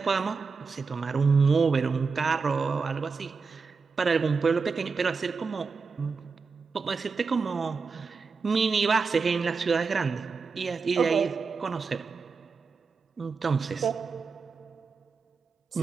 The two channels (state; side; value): quieter; left; 4.9 dB